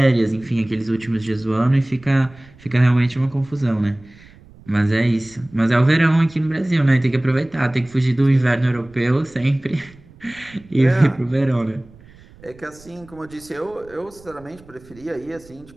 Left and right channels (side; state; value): right; noise; rumble, 24 dB below the sound